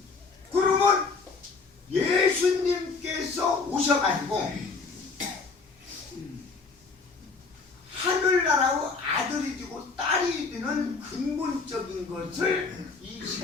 그러면 예수님께서 오셔가지고 하늘나라의 아들이 되고 딸이 되는 근본적인 것을 이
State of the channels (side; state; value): right; quieter; 4.4 dB